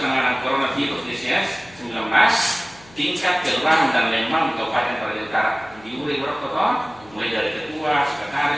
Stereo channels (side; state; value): left; noise; hum, 25 dB below the sound